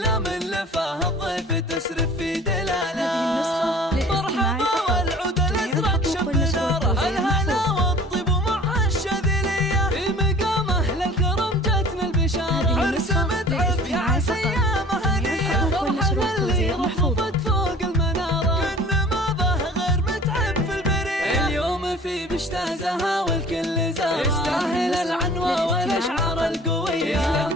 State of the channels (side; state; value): both; normal; correlation 0.46